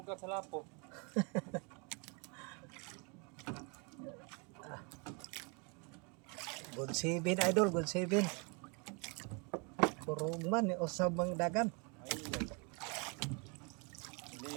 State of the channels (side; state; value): left; quieter; 33.2 dB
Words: sa lapo. Good 7 idol, good 7. Kurong man ni usab ang dagan. Ay.